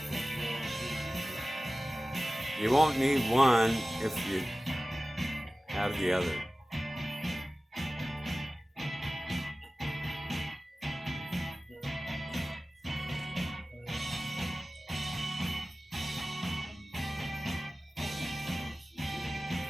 You won't need one if you have the other.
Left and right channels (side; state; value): both; normal; correlation 0.96